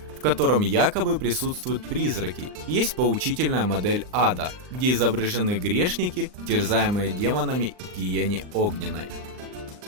в котором якобы присутствуют призраки. Есть поучительная модель ада, где изображены грешники, терзаемые демонами в гиене огненной.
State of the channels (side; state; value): left; late; 39 ms